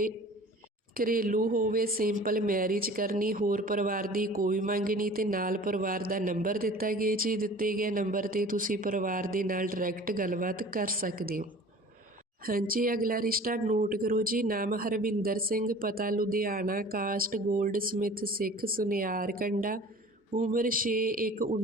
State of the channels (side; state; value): both; normal; correlation 0.44